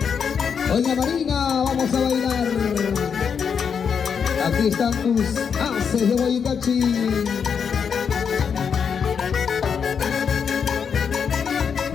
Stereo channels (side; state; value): right; quieter; 6.8 dB